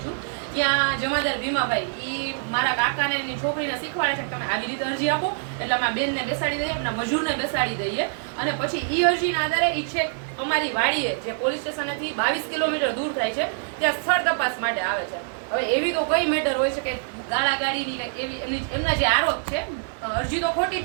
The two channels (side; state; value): left; silent; digital silence